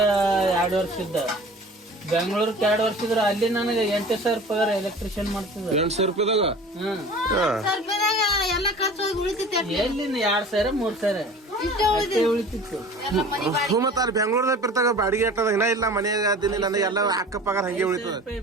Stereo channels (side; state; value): both; normal; correlation 0.42